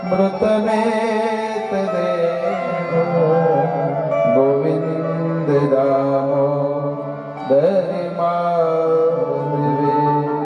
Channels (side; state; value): both; identical; correlation 1.00